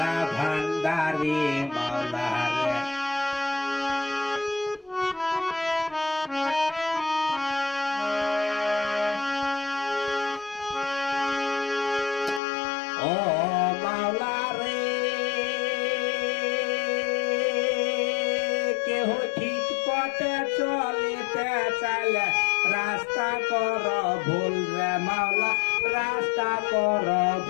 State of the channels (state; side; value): drops out; right; at 12.4 s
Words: ভান্ডারি মাওলা রে ও মাওলা রে কেহ ঠিক পথে চলিতে চাইলে রাস্তা কর ভুল রে মাওলা রাস্তা কর